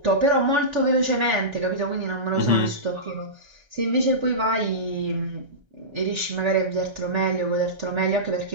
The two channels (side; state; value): left; late; 1.3 ms